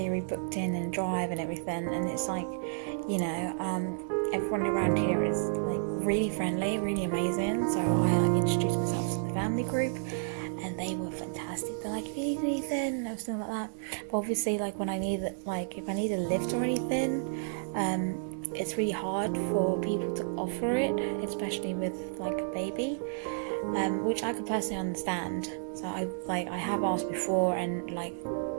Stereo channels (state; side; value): silent; left; digital silence